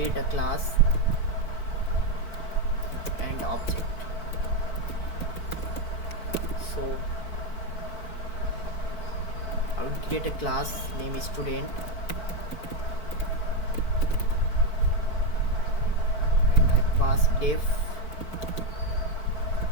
a class and object. So I will create a class, name is student, and I pass def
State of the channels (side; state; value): right; late; 4.5 ms